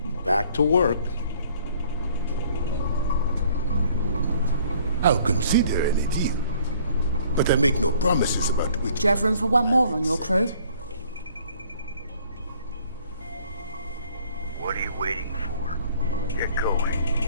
Back to work. I'll consider any deal, but I make no promises about which... Do you have room for one more on your crew? What are you waiting for? Get going.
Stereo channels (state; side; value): inverted; both; correlation -0.59